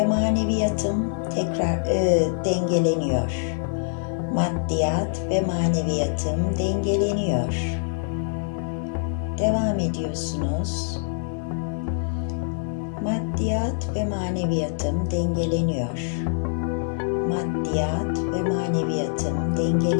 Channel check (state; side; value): silent; right; digital silence